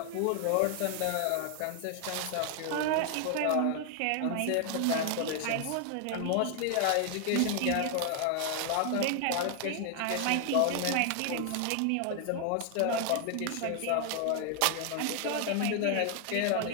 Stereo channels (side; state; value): both; different; correlation 0.00